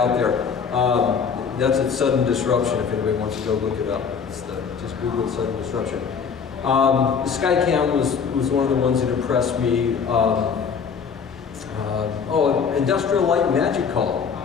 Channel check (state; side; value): quieter; right; 6.3 dB